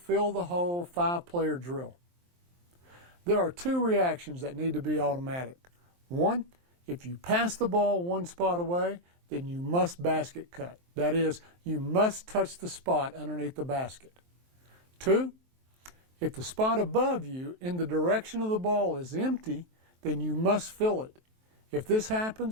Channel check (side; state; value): left; late; 23 ms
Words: the hole, 5-player drill. There are 2 reactions that need to be automatic. 1, if you pass the ball one spot away, then you must basket cut. That is, you must touch the spot underneath the basket. 2, if the spot above you in the direction of the ball is empty, then you must fill it. If this